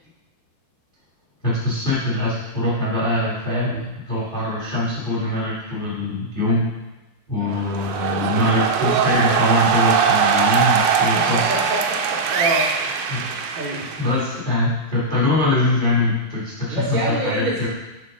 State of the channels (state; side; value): normal; both; correlation -0.09